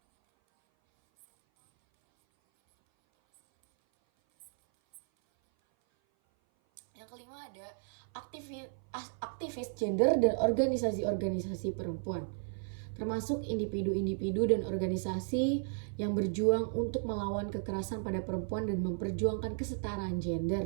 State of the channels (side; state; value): left; silent; 55 dB below the other